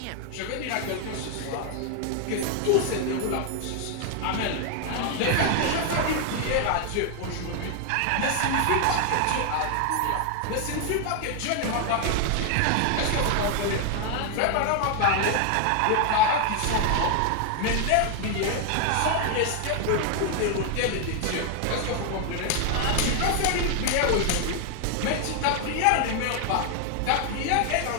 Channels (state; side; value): different; both; correlation 0.00